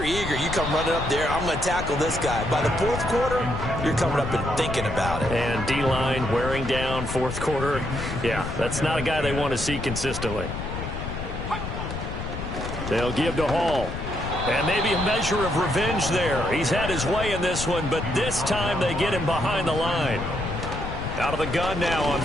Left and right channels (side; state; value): left; noise; rumble, 6 dB below the sound